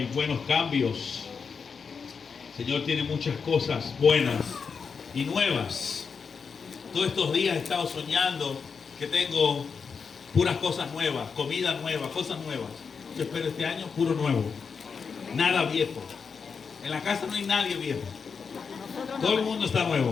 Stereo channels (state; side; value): quieter; right; 5.7 dB